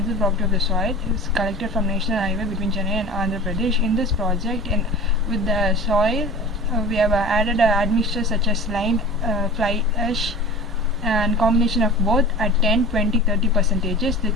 property of the soil. It is collected from National Highway between Chennai and Andhra Pradesh. In this project, with the soil, we have added admixtures such as lime, fly ash, and combination of both at 10, 20, 30 percentages. The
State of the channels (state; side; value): normal; both; correlation 0.38